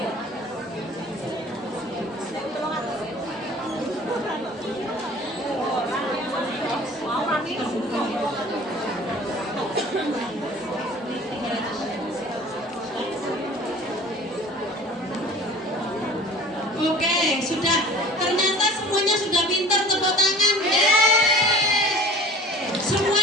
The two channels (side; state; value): both; normal; correlation 0.44